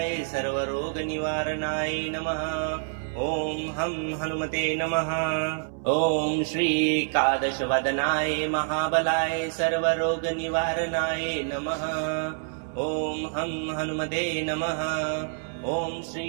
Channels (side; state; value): left; silent; 60 dB below the other